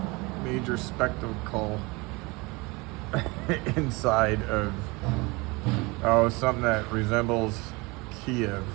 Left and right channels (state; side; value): quieter; left; 25.2 dB